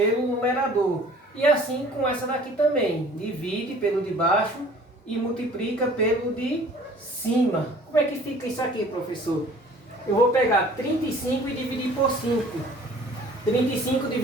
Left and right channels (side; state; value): both; normal; correlation 0.50